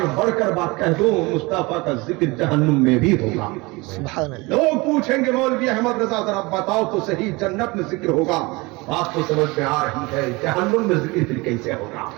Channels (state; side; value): quieter; left; 24.3 dB